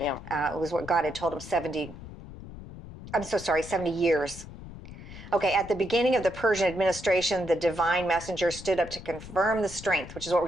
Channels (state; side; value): noise; left; rumble, 14 dB below the sound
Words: It was what God had told them 70 years. Okay, at the beginning of the Persian administration, the divine messenger stood up to confirm the strength, which is what